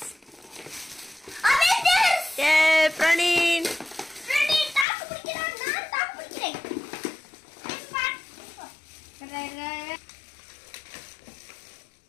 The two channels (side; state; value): right; drops out; at 4.9 s